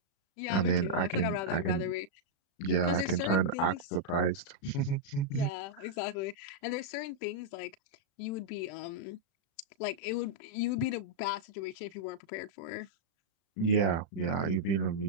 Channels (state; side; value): late; right; 36 ms